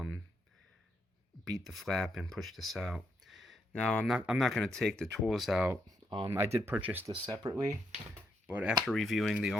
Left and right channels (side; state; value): both; normal; correlation 0.78